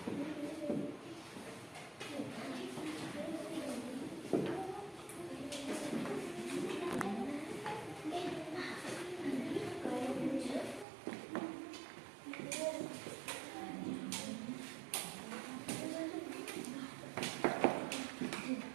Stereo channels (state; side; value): drops out; left; at 10.9 s